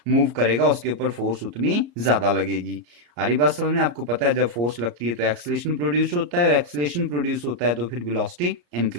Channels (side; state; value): left; late; 34 ms